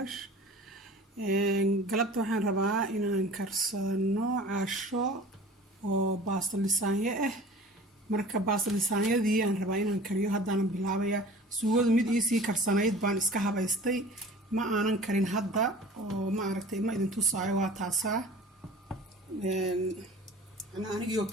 قلبت وحين ربا إن نكرسنو عشو وباصل لسانية marka baasal lisaanyadii aan rabaa inaan kariyo haddana bilaabaya suugada mid ii sii karsanayd baan iska habaystay ma aanan karin hadda oo ma aragtay ma idin tusaayo waa taasa anigoo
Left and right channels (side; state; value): both; normal; correlation 0.42